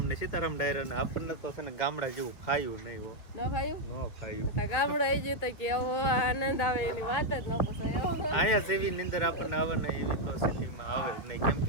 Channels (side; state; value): right; late; 2.6 ms